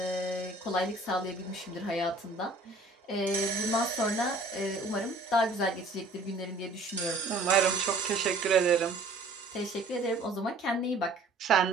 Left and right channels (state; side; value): quieter; left; 3.0 dB